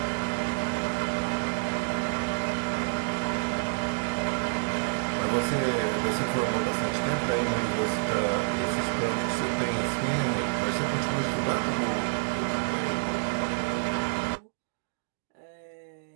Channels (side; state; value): left; silent; digital silence